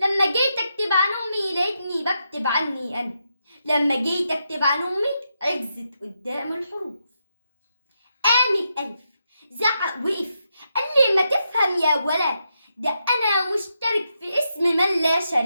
جيت اكتب عن امي لقيتني بكتب عني انا. لما جيت اكتب عن امي عجزت قدام الحروف. قام الالف زعق وقف، قال لي ما تفهم يا ولا، ده انا مشترك في اسم من لا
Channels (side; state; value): both; inverted; correlation -0.84